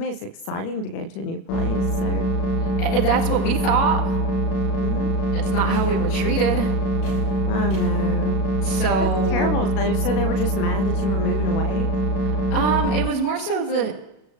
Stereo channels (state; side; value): late; right; 36 ms